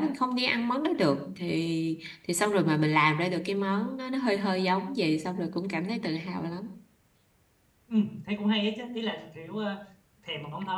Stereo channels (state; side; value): identical; both; correlation 1.00